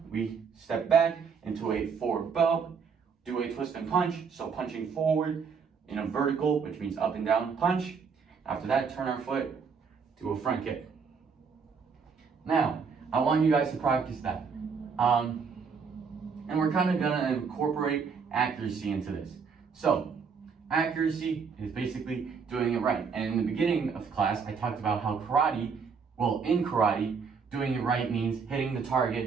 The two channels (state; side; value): quieter; left; 5.8 dB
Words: we step back into a forward bow, do a twist and punch. So punching forward in a vertical, which means up and down punch. After that, turn our foot, do a front kick. Now, I want you guys to practice that. And we're kind of gonna incorporate accuracy into this. So, accuracy is basically doing it right. And in the beginning of class, I talked about how in karate, doing it right means hitting the